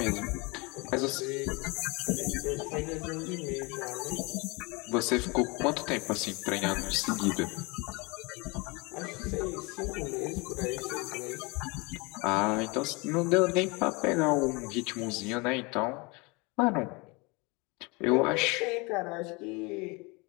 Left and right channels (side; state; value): right; quieter; 27.3 dB